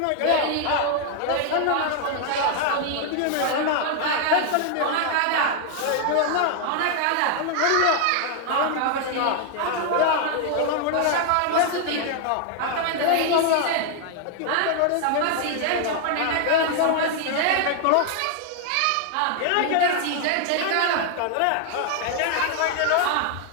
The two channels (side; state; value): both; different; correlation 0.00